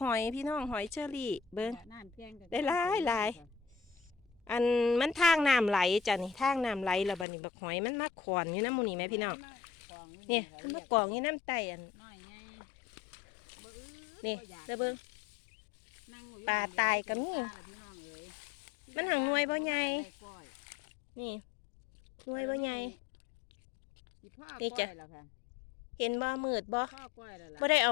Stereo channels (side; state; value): right; drops out; at 7.2 s